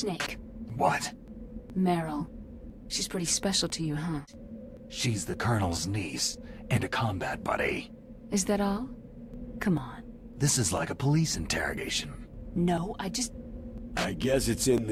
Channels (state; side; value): identical; both; correlation 1.00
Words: What? Meryl. She's pretty special to you, huh? She's the Colonel's niece, and a combat buddy. Is that all? Come on. This is like a police interrogation. No, I guess it's in